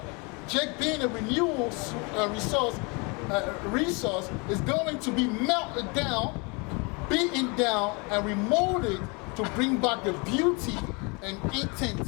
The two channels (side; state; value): right; quieter; 30.7 dB